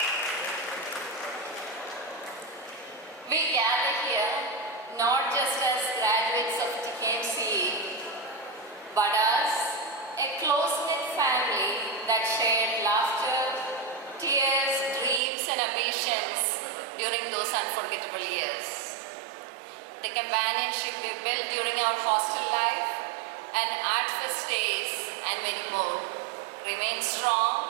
not just as graduates of TKMCE, but as a close-knit family that shared laughter, tears, dreams and ambitions during those unforgettable years. The companionship we built during our hostel life and art fest days and many more remains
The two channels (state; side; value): drops out; left; at 15.2 s